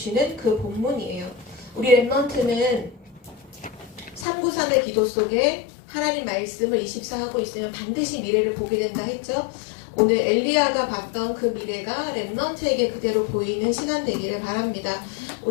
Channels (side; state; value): right; drops out; at 4.2 s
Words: 그 본문이에요. 우리 랩넌트는 393의 기도 속에 하나님 말씀을 24하고 있으면 반드시 미래를 보게 된다 했죠. 오늘 엘리야가 봤던 그 미래가 랩넌트에게 그대로 보이는 시간 되기를 바랍니다.